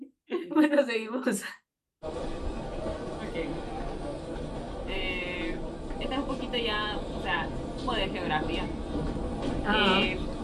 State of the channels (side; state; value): both; identical; correlation 1.00